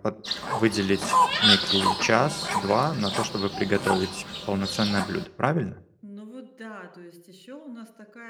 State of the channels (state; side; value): identical; both; correlation 1.00